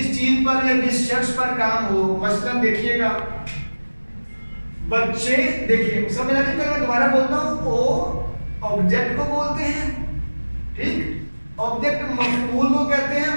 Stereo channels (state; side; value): inverted; both; correlation -1.00